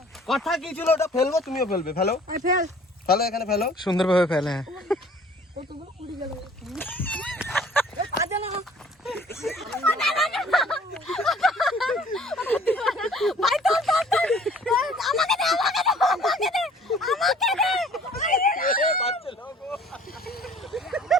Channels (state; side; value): normal; both; correlation 0.53